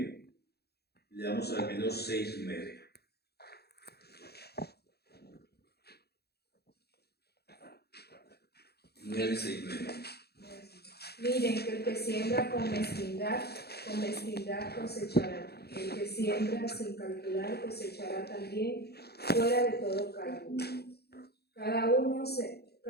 leamos al menos 6, 9. Miren que el que siembra con mezquindad cosechará. El que siembra sin calcular cosechará también fuera de todo cálculo. Cada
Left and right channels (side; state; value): right; late; 0.47 ms